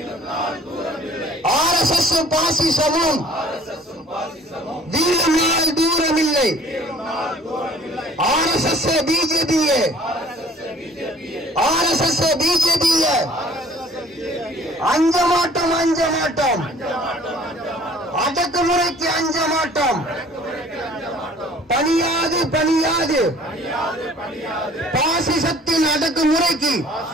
RSS பாசிசமும் வீழும் நாள் தூரம் இல்லை. RSS பிஜேபியே அஞ்ச மாட்டோம். அடக்குமுறைக்கு அஞ்ச மாட்டோம். பணியாது பணியாது பாசிசத்தின் அடக்குமுறைக்கு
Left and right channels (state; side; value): normal; both; correlation 0.53